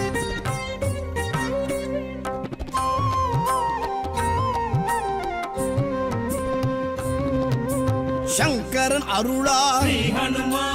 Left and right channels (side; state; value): both; identical; correlation 1.00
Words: శంకరన్ అరుళా శ్రీ